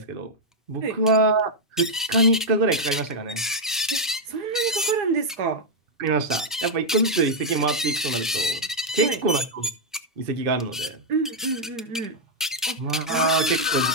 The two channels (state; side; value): normal; both; correlation -0.03